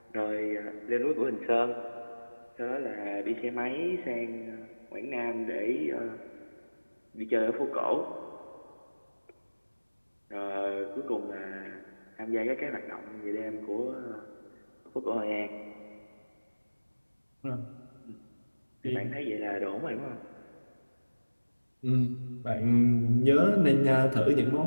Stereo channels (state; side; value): inverted; both; correlation -1.00